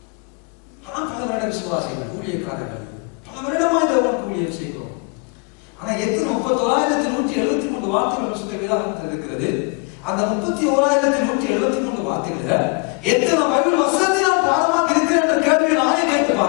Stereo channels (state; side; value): quieter; right; 32.3 dB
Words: ஆனால் பல வருட விசுவாசிகள், ஊழியக்காரர்கள் பல வருடமா இந்த ஊழியம் செய்கிறோம். ஆனா எத்தனை 31,173 வார்த்தைகள் பரிசுத்த வேதாகமத்தில் இருக்கிறது. அந்த 31,173 வார்த்தைகளில் எத்தனை பைபிள் வசனத்தை நான் பாடமாக்கி இருக்கிறேன் என்ற கேள்வியை நானே கேட்டு